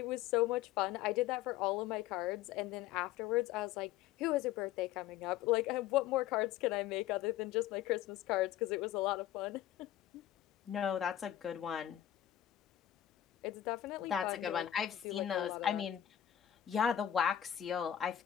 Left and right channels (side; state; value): right; quieter; 11.6 dB